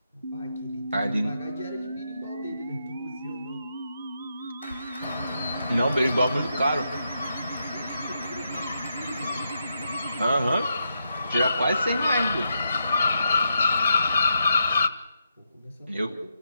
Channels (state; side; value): inverted; both; correlation -0.83